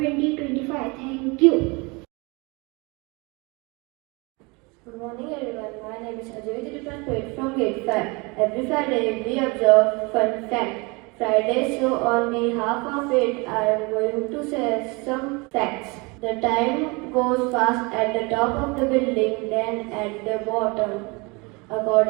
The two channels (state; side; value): quieter; left; 27.6 dB